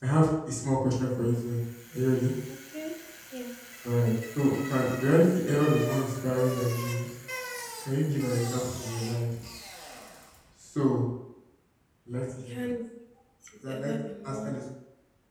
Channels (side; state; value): both; identical; correlation 1.00